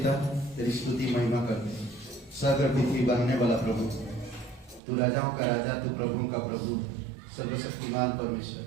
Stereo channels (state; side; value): drops out; left; at 4.8 s